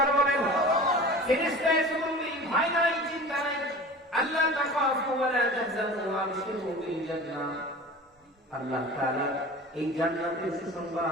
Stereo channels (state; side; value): normal; both; correlation 0.37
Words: বলেন। ফেরেশতা এসে বলবে ভয় নাই, চিন্তা নাই, আল্লাহ তাখাফু ওয়া লা তাহজানু ওয়া আবশিরু বিল জান্নাহ। আল্লাহ তাআলা এই জান্নাতের